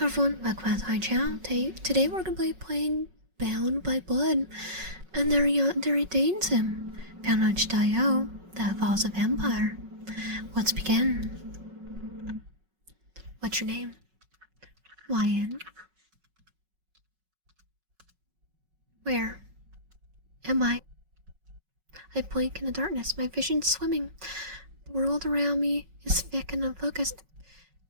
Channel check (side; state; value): left; late; 5.4 ms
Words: everyone, welcome back to my channel. Today we're going to be playing Bound by Blood, and there Yandere dates him. Bound on itchio, that involves a vampire. Let's begin. What's your name? Lion. Where am I? I blink in the darkness, my vision's swimming. The world around me is thick and unfocused.